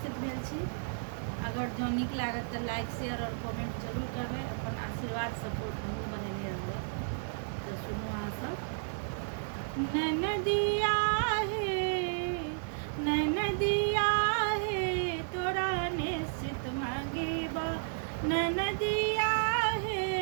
भेल छी। अगर जो नीक लागत तो लाइक शेयर और कमेंट जरूर करबै। अपन आशीर्वाद सपोर्ट हमहूँ बनेने रहबै। तो सुनू अहाँ सब। ननदिया हे तोरा निश्चित मांगेबा, ननदिया हे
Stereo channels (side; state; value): left; silent; 56 dB below the other